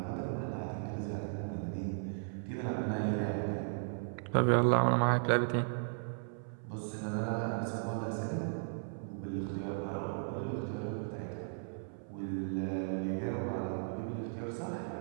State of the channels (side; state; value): left; silent; 54 dB below the other